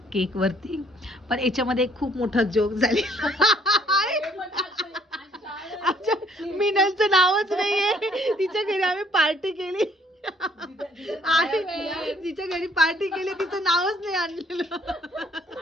केक वरती. पण याच्यामध्ये एक खूप मोठा जोक झाले. आमच्या मिनलचं नावच नाहीये. तिच्या घरी आम्ही पार्टी केली आणि तिच्या घरी पार्टी केली, तिचं नावच नाही आणलेलं.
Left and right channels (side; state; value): both; normal; correlation 0.63